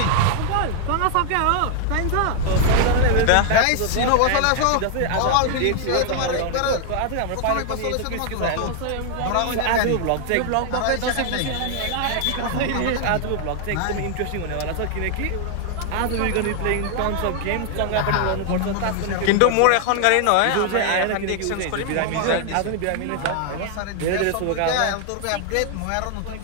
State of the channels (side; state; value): both; different; correlation 0.00